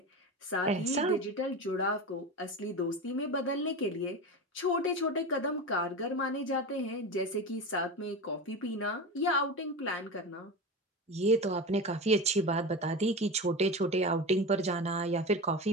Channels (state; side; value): normal; both; correlation 0.25